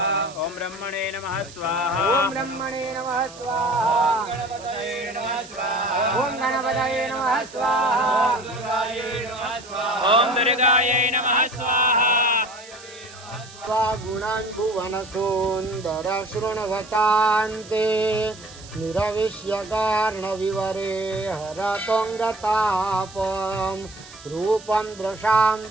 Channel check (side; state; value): right; noise; hiss, 19 dB below the sound